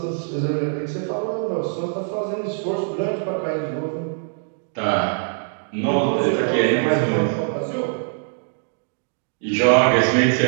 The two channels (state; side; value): silent; left; 58 dB below the other